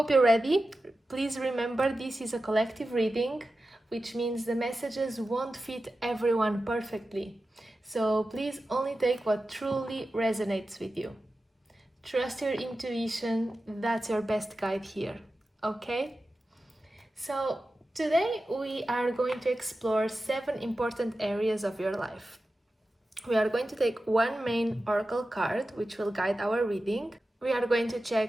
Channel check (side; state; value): both; normal; correlation 0.93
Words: you're ready. Please remember this is a collective reading, which means the messages won't fit everyone perfectly. So please only take what truly resonates with you. Trust your intuition, that's your best guide here, okay? So today we are going to explore 7 important areas of your life. We are going to take one main oracle card, which will guide our reading. We are going to